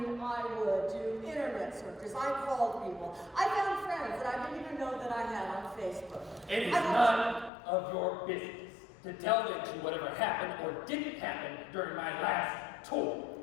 do internet searches. I called people. I found friends that I didn't even know that I had on Facebook. It is none of your business to delve into whatever happened or didn't happen during my last tour.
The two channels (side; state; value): right; drops out; at 7.5 s